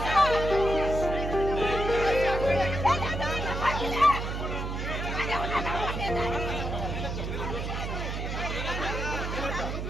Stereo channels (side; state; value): right; noise; hum, 4 dB below the sound